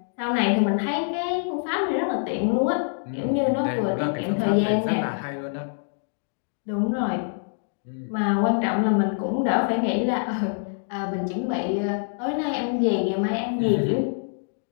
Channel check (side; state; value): right; silent; digital silence